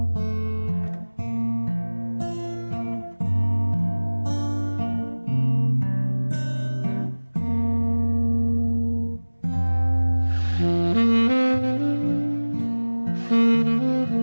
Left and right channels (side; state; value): both; inverted; correlation -1.00